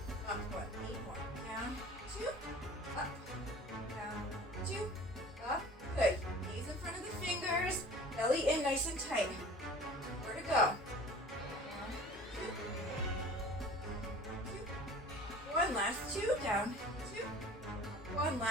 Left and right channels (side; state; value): both; normal; correlation 0.44